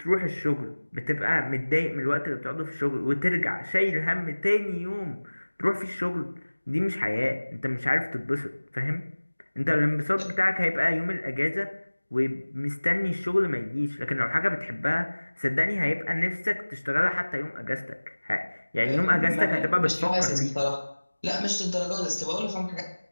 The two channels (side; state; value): both; inverted; correlation -1.00